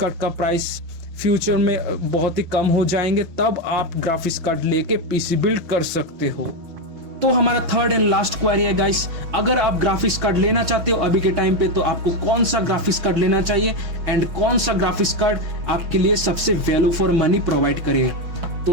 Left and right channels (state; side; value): late; left; 6.2 ms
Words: का प्राइस फ्यूचर में बहुत ही कम हो जाएंगे तब आप ग्राफिक्स कार्ड लेके पीसी बिल्ड कर सकते हो। तो हमारा थर्ड एंड लास्ट क्वेरी है गाइस, अगर आप ग्राफिक्स कार्ड लेना चाहते हो अभी के टाइम पे तो आपको कौन सा ग्राफिक्स कार्ड लेना चाहिए एंड कौन सा ग्राफिक्स कार्ड आपके लिए सबसे वैल्यू फॉर मनी प्रोवाइड करेगा।